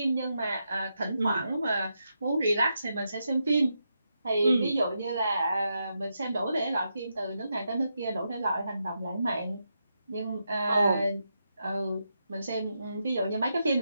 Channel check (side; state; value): both; inverted; correlation -0.84